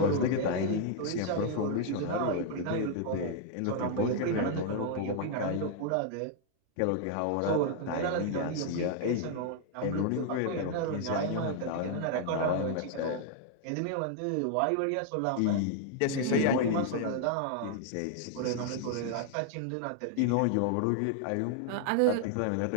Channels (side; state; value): both; different; correlation 0.00